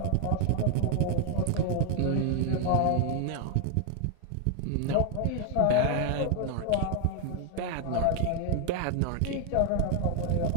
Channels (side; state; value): both; different; correlation 0.00